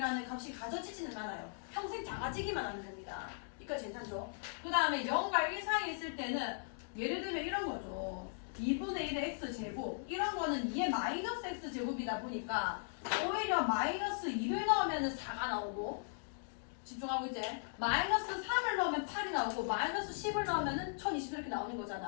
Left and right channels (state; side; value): silent; right; digital silence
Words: 값이 가져지지는 않아요. 평생 작아지기만 하는 겁니다. 여기까지 괜찮죠? 그 다음에 0과 1 사이에 있을 때는 예를 들면 이런 거죠. 2분의 1의 x제곱 이런 거는 2의 마이너스 x제곱이다 보니까 오히려 마이너스 2를 넣으면 4가 나오고 집중하고 있지? 마이너스 3을 넣으면 8이 나오고 마이너스 10을 넣으면 1020 이렇게 나오는